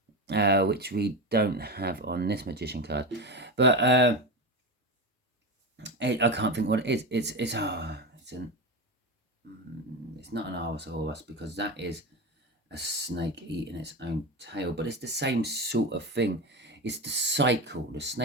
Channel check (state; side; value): normal; both; correlation 0.21